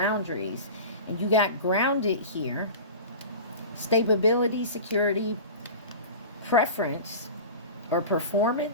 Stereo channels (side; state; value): both; inverted; correlation -0.34